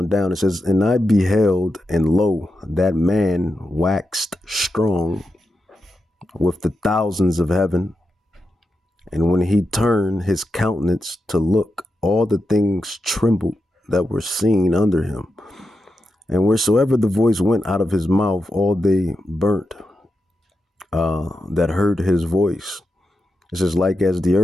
down. It says, and I beheld, and lo, that man waxed strong with the thousands of heaven. And when he turned his countenance to look, all the things trembled that were seen under him. And wheresoever the voice went out of his mouth, all they burnt that heard his voice. It says, like as the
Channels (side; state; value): both; normal; correlation 0.88